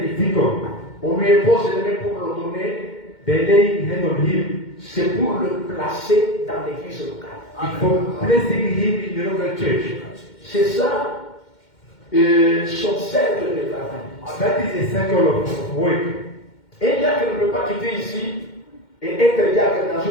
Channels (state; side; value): late; right; 2.1 ms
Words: deacon, on lui impose les mains pour l'ordonner, they lay hand on him. c'est pour le placer dans l'église locale. It's for placing him in the local church. C'est ça son cercle de travail. That is a circle of work. Un diacre ne peut pas quitter ici et être diacre dans